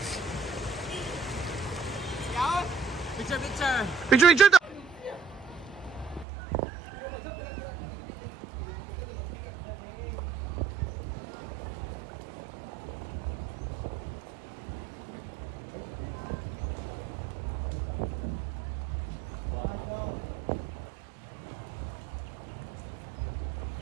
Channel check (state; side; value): drops out; left; at 6.2 s